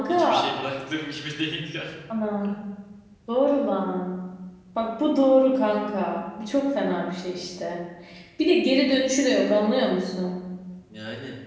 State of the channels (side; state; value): both; identical; correlation 1.00